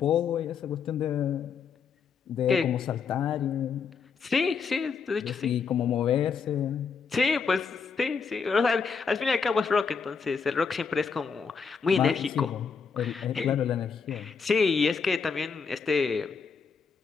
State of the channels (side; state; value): right; quieter; 5.7 dB